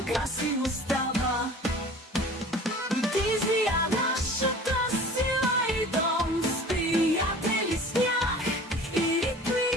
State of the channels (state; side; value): normal; both; correlation 0.43